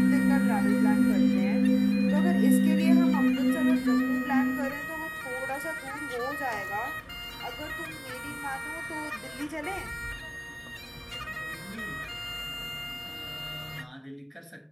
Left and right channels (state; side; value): identical; both; correlation 1.00